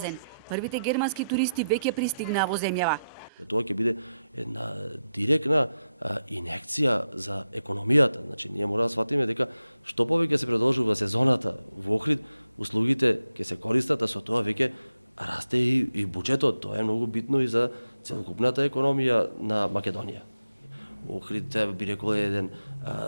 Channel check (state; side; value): inverted; both; correlation -0.89